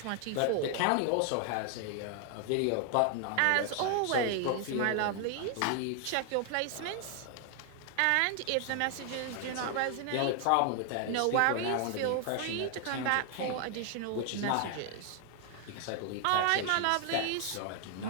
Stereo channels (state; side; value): different; both; correlation 0.00